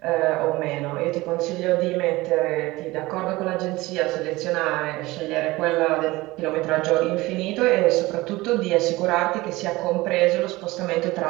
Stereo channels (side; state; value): left; quieter; 20.1 dB